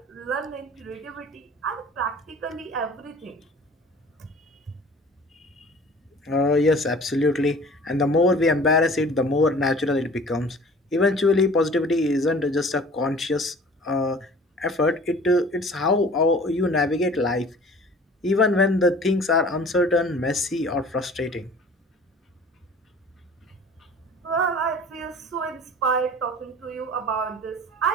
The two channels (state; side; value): normal; both; correlation 0.46